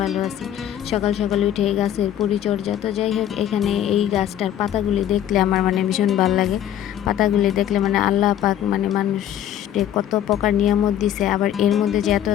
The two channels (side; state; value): right; quieter; 11.1 dB